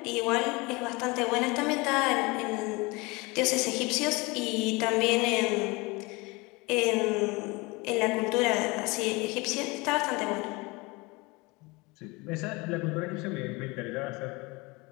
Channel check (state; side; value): quieter; right; 25.2 dB